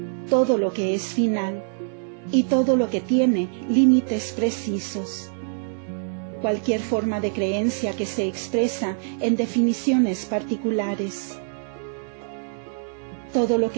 todo lo que es final y todo lo que tiene límites precisos. Cualquier forma de creencia que se expresa en definiciones particulares. Todo lo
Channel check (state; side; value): silent; left; 62 dB below the other